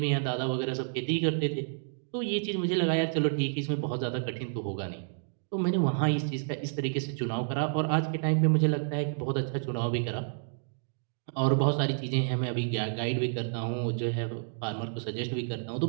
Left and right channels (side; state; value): left; silent; digital silence